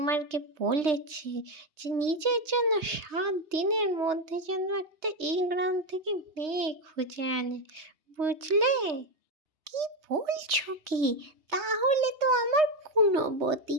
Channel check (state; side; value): late; left; 3.3 ms